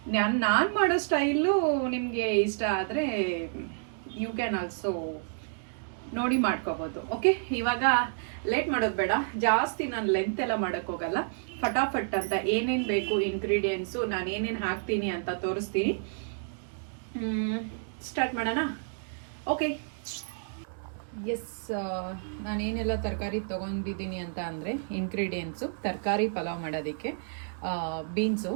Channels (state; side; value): silent; left; digital silence